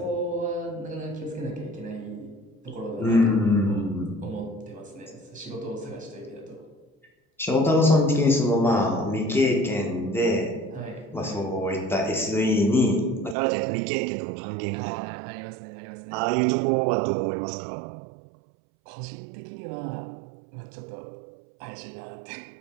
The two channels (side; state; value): left; drops out; at 13.4 s